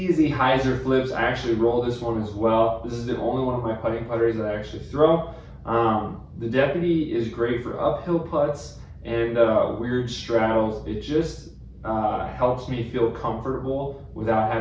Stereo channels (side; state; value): both; identical; correlation 1.00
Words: hyzer flips. I actually roll this one as well. This is the only one of my putting putters that I actually throw. The Deputy is great for uphill putts and weird straddles. It just helps me feel comfortable without